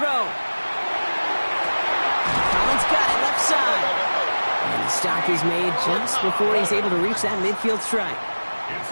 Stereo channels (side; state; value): both; inverted; correlation -1.00